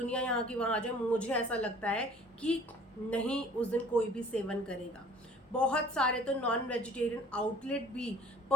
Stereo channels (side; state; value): both; normal; correlation 0.49